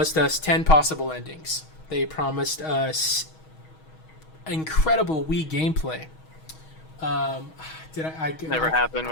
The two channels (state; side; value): late; right; 6.3 ms